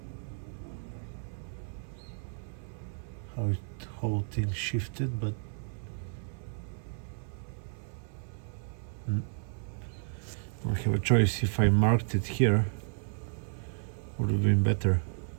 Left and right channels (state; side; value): silent; left; 56 dB below the other